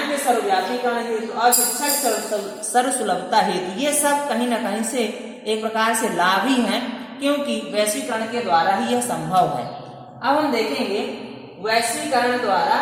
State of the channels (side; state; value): both; identical; correlation 1.00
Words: के सर्वव्यापीकरण हेतु और शिक्षा की सर्वसुलभता हेतु। ये सब कहीं न कहीं से एक प्रकार से लाभ ही हैं, क्योंकि वैश्वीकरण के द्वारा ही यह संभव है। अब हम देखेंगे वैश्वीकरण द्वारा